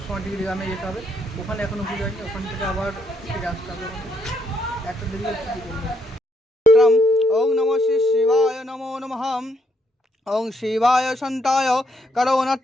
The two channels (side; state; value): both; normal; correlation 0.74